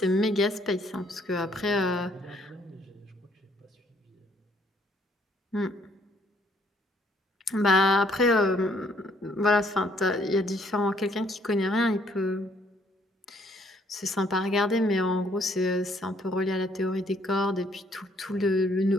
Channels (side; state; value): both; normal; correlation 0.65